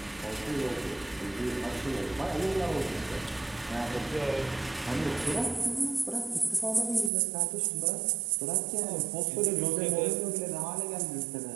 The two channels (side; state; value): left; drops out; at 7.1 s